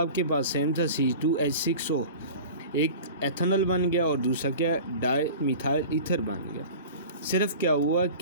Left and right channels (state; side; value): inverted; both; correlation -0.38